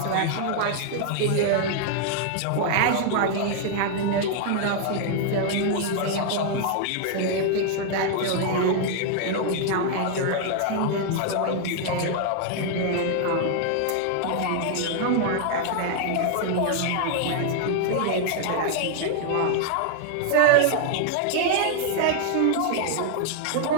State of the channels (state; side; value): different; both; correlation 0.00